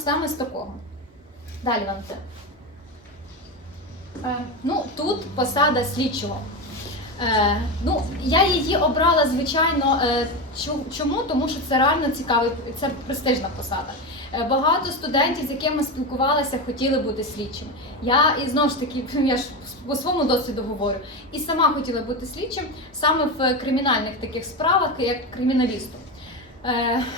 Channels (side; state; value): both; normal; correlation 0.18